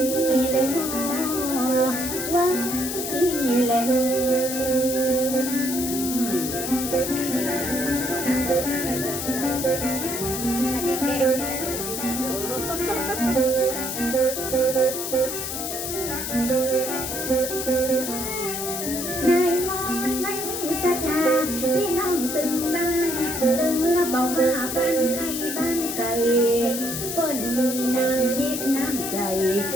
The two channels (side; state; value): left; noise; hiss, 4 dB below the sound